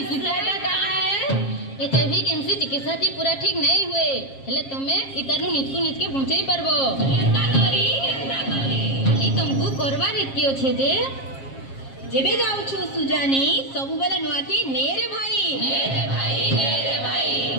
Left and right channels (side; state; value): right; late; 7.4 ms